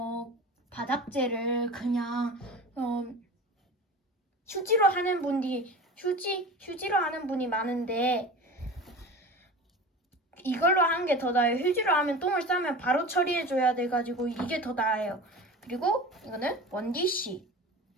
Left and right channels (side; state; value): both; normal; correlation 0.34